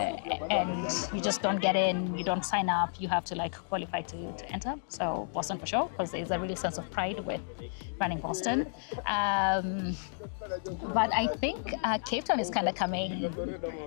you just don't get in, you don't sign up, you have to like qualify to enter. So Boston for sure, because there's a really sense of pride with running Boston. But I think Cape Town is kind of coming.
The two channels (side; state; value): right; silent; digital silence